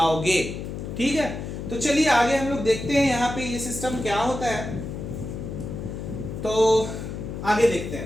ठीक है, तो चलिए आगे हम लोग देखते हैं यहाँ पे ये सिस्टम क्या होता है। तो आगे देखते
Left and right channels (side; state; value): left; noise; hum, 7 dB below the sound